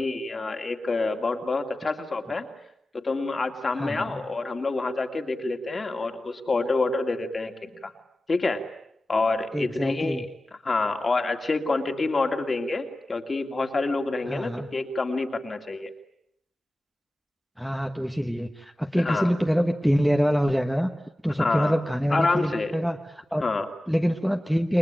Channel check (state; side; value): normal; both; correlation 0.95